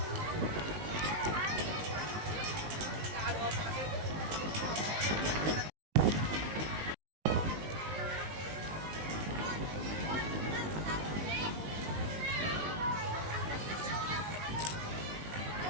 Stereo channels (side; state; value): left; late; 19 ms